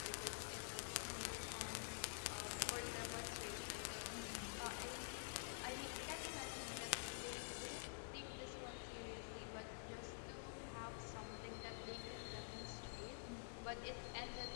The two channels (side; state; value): right; silent; digital silence